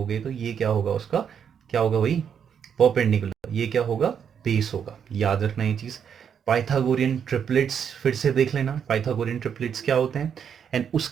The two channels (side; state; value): left; quieter; 7.8 dB